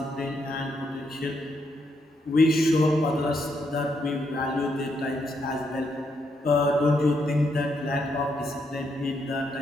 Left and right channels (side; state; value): both; normal; correlation 0.78